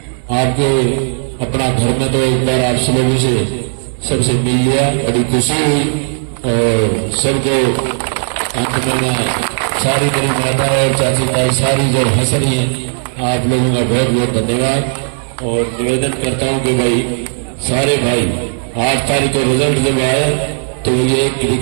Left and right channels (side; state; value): left; silent; digital silence